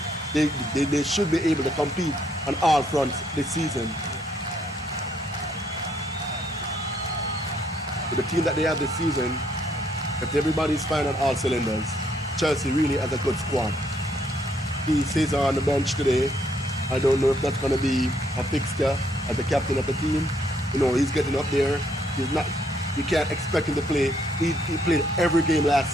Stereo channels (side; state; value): both; normal; correlation 0.70